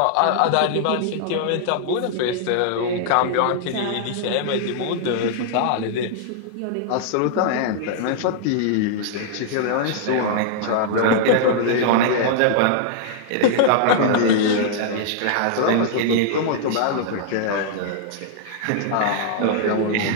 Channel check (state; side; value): different; both; correlation -0.01